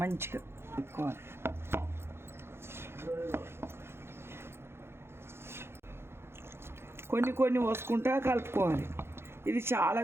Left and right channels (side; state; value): left; late; 0.12 ms